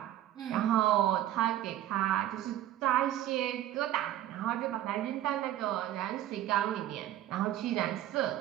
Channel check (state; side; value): quieter; left; 12.9 dB